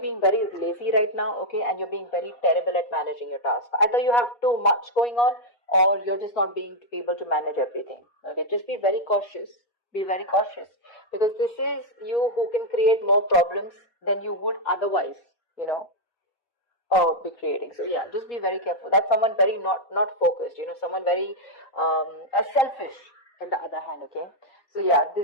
very lazy right now, okay? And you're being very terrible at managing your task. Either you have too much going on or you're just not being able to manage everything. Okay, just be very cautious. Be very cautious because this is you who can create more problems than you would otherwise, you know, be creating. So yeah, just be very careful. That's someone very not focused, you know, someone very selfish in the other hand, okay? So yeah,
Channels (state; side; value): late; right; 4.2 ms